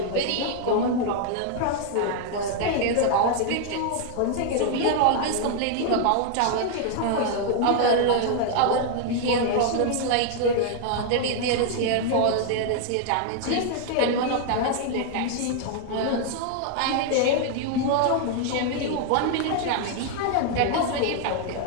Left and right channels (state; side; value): different; both; correlation 0.00